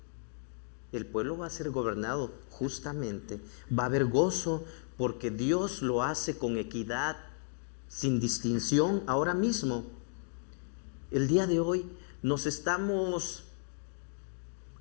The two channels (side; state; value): right; silent; 55 dB below the other